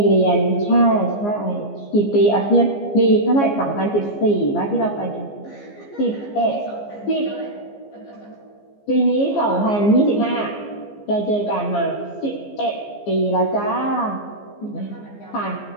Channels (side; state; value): right; late; 15 ms